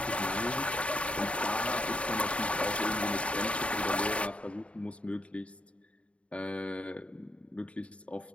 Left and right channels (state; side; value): late; right; 0.062 ms